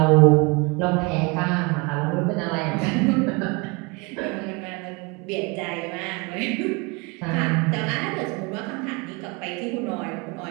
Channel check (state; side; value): quieter; left; 28.1 dB